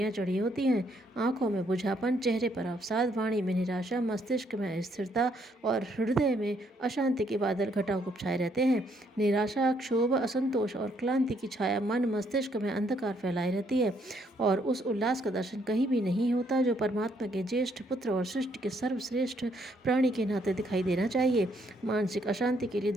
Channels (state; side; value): normal; both; correlation 0.71